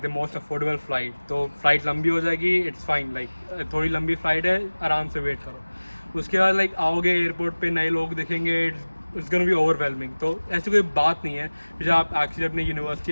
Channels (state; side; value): inverted; both; correlation -1.00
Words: most affordable flight. तो फ्लाइट लंबी हो जाएगी, इट्स फाइन, थोड़ी लंबी फ़्लाइट है, आराम से वेट करो। उसके बाद आओगे एयरपोर्ट पे, नए लोग दिखेंगे, इट्स गोना बी ओवरवेलमिंग। तो ऐसी कोई बात नहीं है। जब आप एक्चुअली अपनी यूनिवर्सिटी